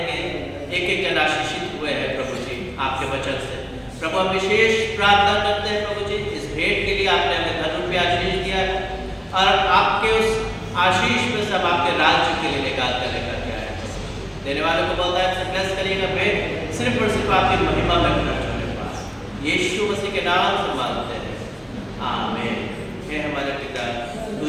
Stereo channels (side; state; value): both; identical; correlation 1.00